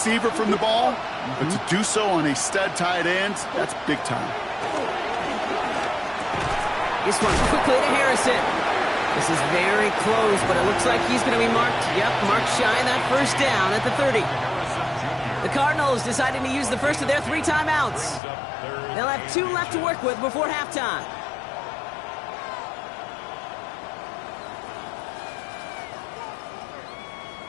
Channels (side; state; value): right; drops out; at 18.2 s